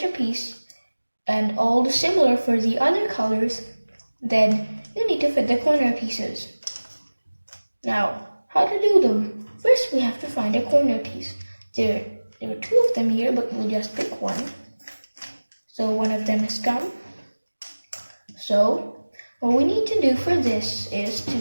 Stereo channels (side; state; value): both; inverted; correlation -1.00